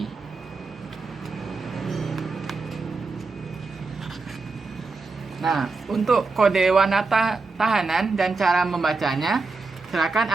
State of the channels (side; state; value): left; quieter; 4.0 dB